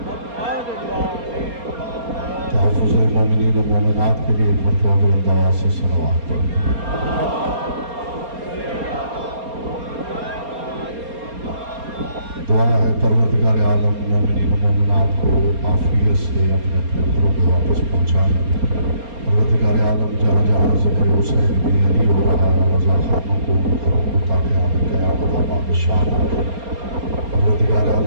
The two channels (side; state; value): left; late; 4.3 ms